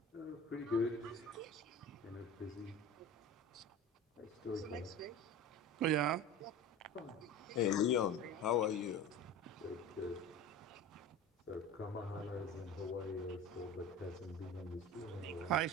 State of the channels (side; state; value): both; normal; correlation 0.33